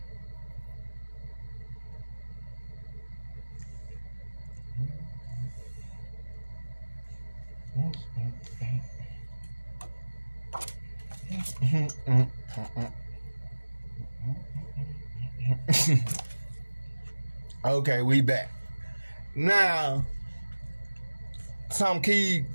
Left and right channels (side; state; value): both; inverted; correlation -1.00